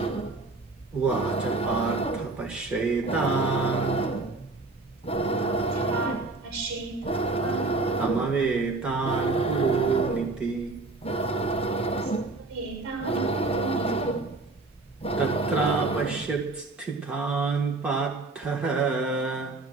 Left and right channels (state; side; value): quieter; left; 3.4 dB